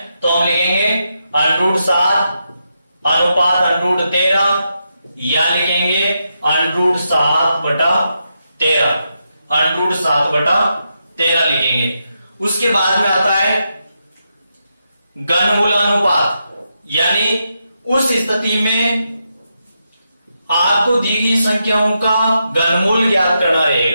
तो हम लिखेंगे √7 अनुपात √13, या लिखेंगे √7/13 √7/13 लिखेंगे। उसके बाद में आता है घनमूलानुपात, यानी उस स्थिति में आपको दी गई संख्याओं का घनमूल ज्ञात करना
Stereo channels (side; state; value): both; inverted; correlation -0.84